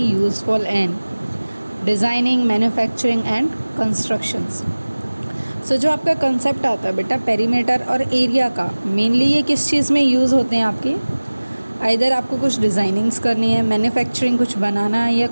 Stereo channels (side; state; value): both; inverted; correlation -1.00